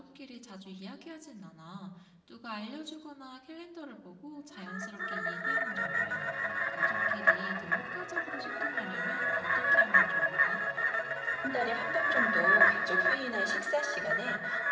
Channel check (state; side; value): identical; both; correlation 1.00